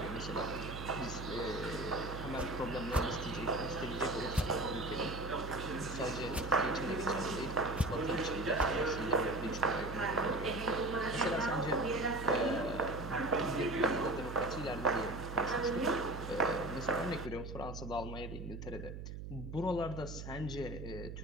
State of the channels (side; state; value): right; noise; hum, 8 dB below the sound